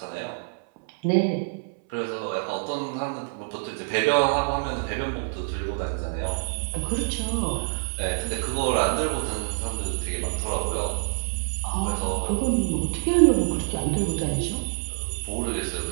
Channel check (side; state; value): left; silent; 61 dB below the other